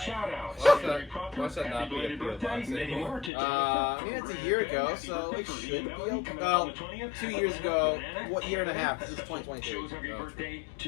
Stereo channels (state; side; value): drops out; right; at 3.3 s